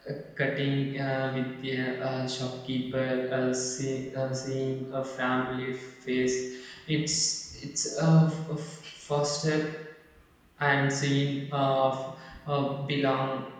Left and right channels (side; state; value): both; identical; correlation 1.00